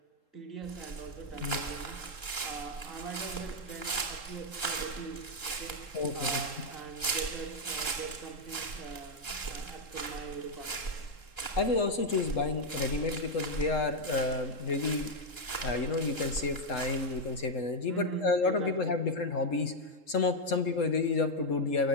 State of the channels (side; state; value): right; late; 3.7 ms